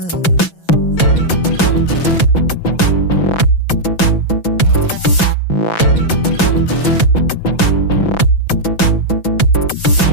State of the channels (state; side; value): late; right; 6.0 ms